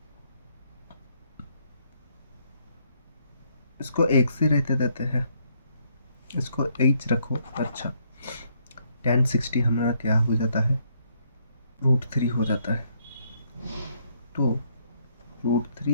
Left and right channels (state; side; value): inverted; both; correlation -0.71